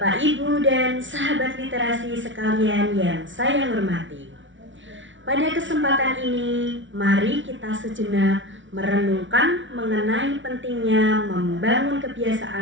Ibu, dan sahabat literasi sekalian yang saya hormati. Pada kesempatan ini, mari kita sejenak merenungkan mengenai pentingnya membangun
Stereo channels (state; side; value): late; left; 0.56 ms